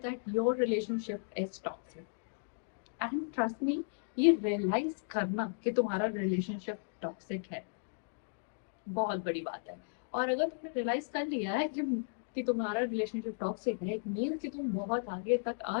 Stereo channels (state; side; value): silent; right; digital silence